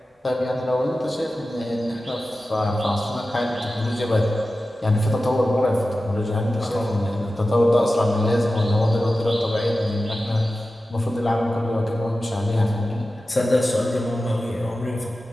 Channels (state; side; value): normal; both; correlation 0.94